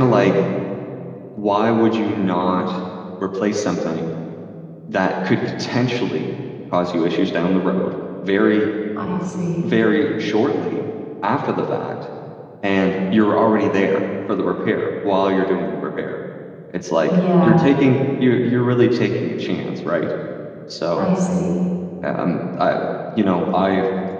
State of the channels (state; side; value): identical; both; correlation 1.00